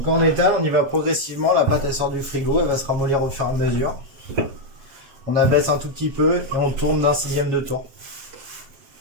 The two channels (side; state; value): left; late; 7.2 ms